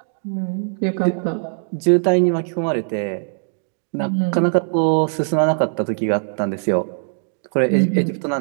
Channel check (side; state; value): left; silent; digital silence